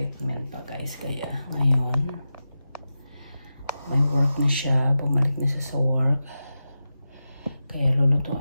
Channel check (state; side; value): inverted; both; correlation -0.92